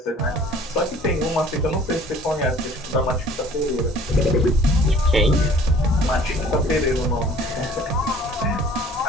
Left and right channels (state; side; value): normal; both; correlation 0.52